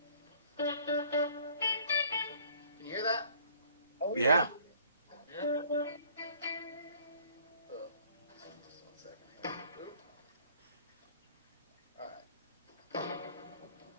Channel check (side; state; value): both; inverted; correlation -0.57